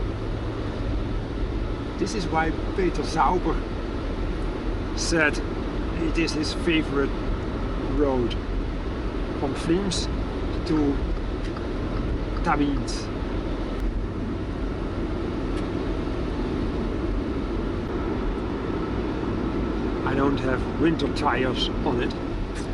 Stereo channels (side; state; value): both; identical; correlation 1.00